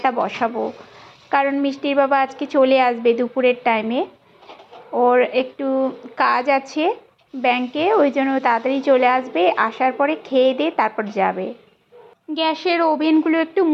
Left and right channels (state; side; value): identical; both; correlation 1.00